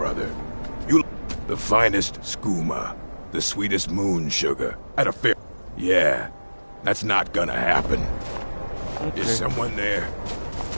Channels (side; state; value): both; inverted; correlation -1.00